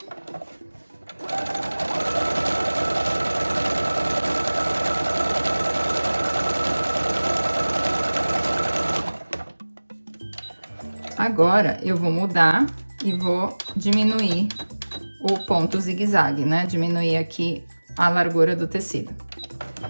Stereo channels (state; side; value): inverted; both; correlation -1.00